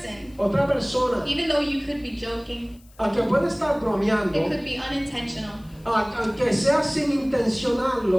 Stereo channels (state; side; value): noise; left; hiss, 29 dB below the sound